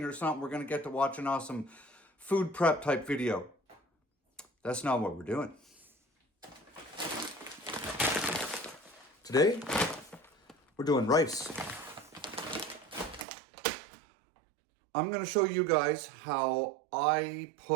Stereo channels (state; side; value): drops out; left; at 13.2 s